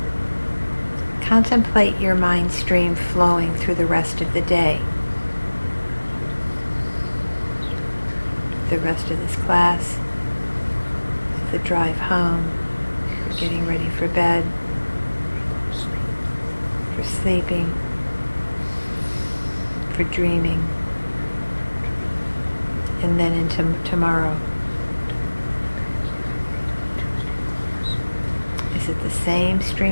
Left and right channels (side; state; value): both; inverted; correlation -1.00